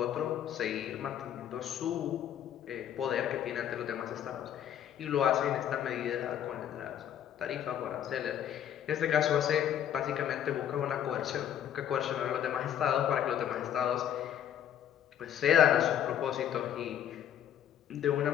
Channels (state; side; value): quieter; right; 10.1 dB